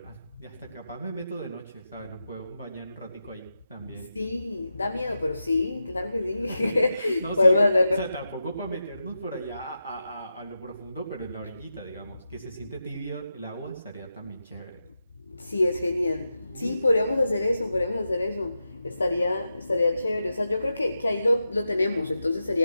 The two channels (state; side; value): inverted; both; correlation -0.90